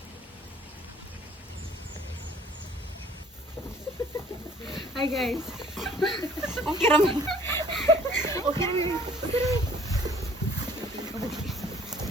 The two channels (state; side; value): normal; both; correlation 0.55